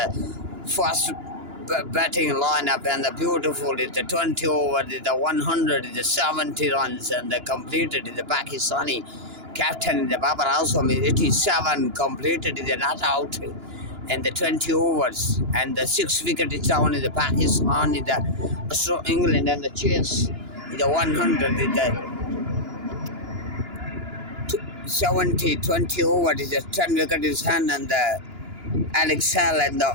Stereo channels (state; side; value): late; left; 2.9 ms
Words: first batting lineup, and the beautiful is the 20 over, is the 100, is the 70 runs, and the completed is the Pakistani captain, the Babar Azam is 87 completed, is not out, and the 20 overs, and the 6 wicket is down in the Pakistan, is the England, and the chase is the 100, is the 70, 20 over is a 10 wicket is hand, and the Alex Hall and the